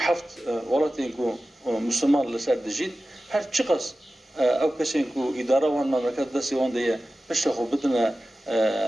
ولایتی که مسلمان لسر دجید هر چقدر او کسی که اداره وان مملکت دستی وان دیه پشت خود بدن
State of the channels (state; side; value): normal; both; correlation 0.95